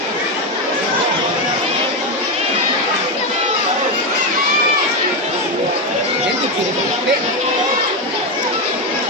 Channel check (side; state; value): both; normal; correlation 0.10